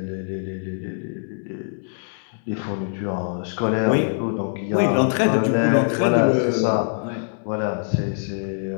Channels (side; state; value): right; silent; digital silence